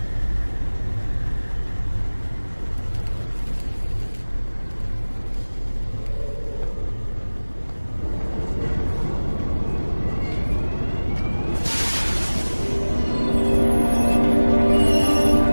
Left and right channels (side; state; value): both; inverted; correlation -1.00